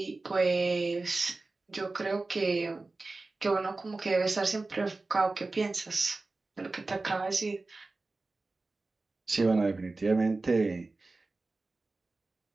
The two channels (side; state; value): left; quieter; 3.4 dB